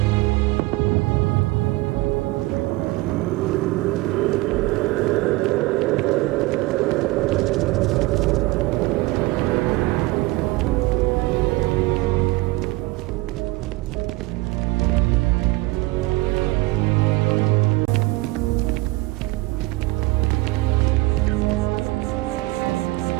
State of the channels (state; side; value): quieter; left; 21.1 dB